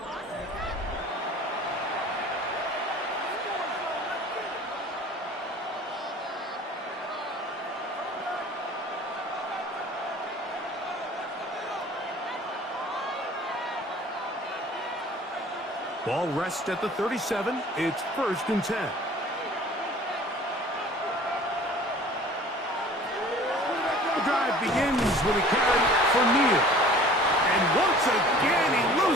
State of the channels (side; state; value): both; normal; correlation 0.47